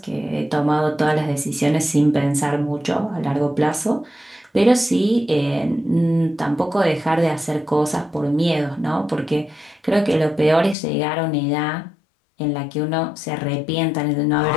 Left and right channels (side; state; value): right; drops out; at 10.8 s